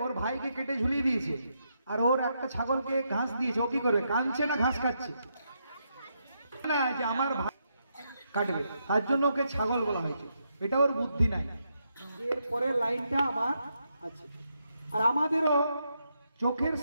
ওর ভাইকে কেটে ঝুলিয়ে দিয়েছে, আর ওর একটা ছাগলকে ঘাস দিয়েছে, ও কি করবে? কাঁদছে না ঘাস খাচ্ছে? না, যে আমার ভাই কাটবে, তার জন্য ওকে ছাগল বলা হয়েছে। এটা ওর বুদ্ধি নাই। এর পরের লাইনটা আমার আছে। আর আমাদেরও চোখের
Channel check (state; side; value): inverted; both; correlation -0.80